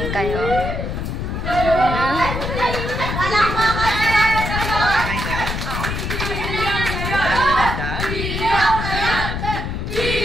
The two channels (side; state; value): left; noise; rumble, 3 dB below the sound